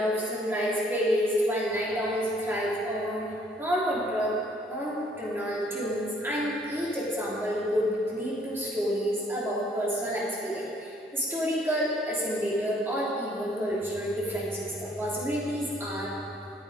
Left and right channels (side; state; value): both; normal; correlation 0.62